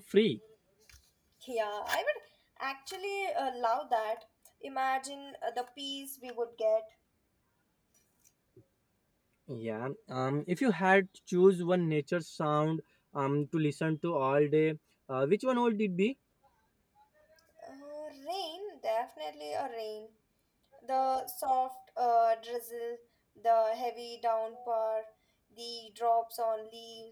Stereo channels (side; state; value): both; identical; correlation 1.00